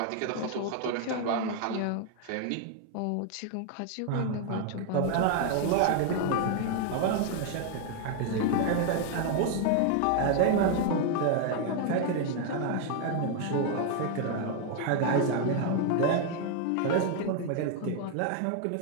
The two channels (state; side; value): different; both; correlation 0.00